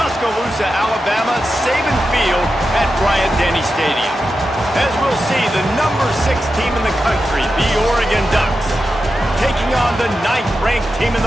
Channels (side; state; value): both; normal; correlation 0.90